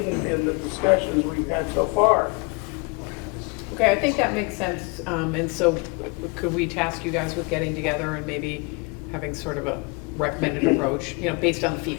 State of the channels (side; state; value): right; quieter; 30.3 dB